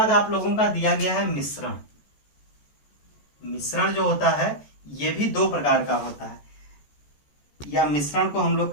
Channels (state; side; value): late; right; 14 ms